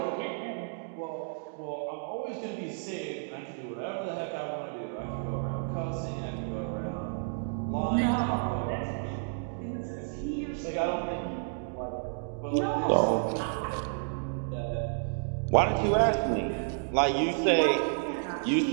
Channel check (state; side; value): silent; left; digital silence